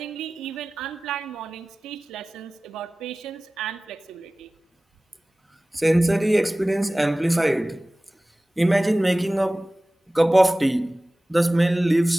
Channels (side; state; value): both; normal; correlation 0.98